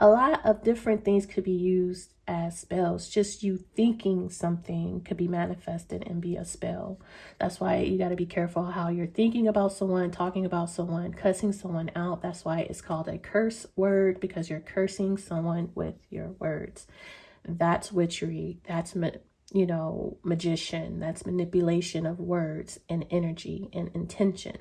lot of different things could be used as spells. Just you thinking something could be manifested and be a spell. That's why you got to be careful how you're thinking about someone, talking about someone, cussing someone out. That's why it's called a curse word, because you're cursing someone with your words. That's witchery. That's, you know, magician. That's manipulation of words and energy and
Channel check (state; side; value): identical; both; correlation 1.00